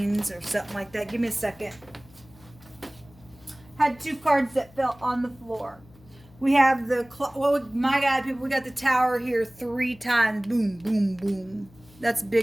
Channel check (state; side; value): noise; left; hum, 25 dB below the sound